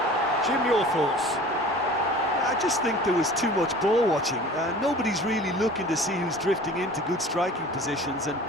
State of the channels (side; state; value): both; normal; correlation 0.43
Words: Jim, your thoughts? I just think there was too much ball watching. Nobody's really looking to see who's drifting into good striking positions, and